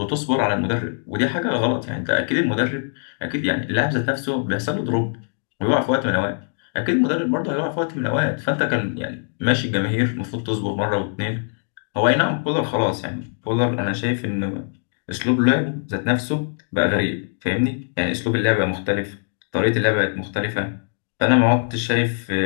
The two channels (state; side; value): silent; right; digital silence